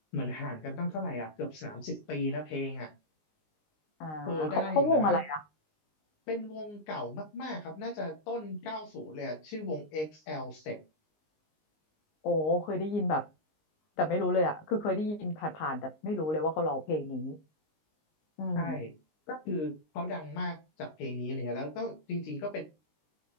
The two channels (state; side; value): late; right; 19 ms